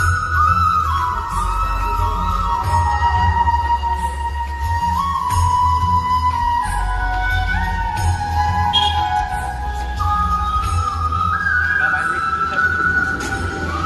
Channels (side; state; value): both; identical; correlation 1.00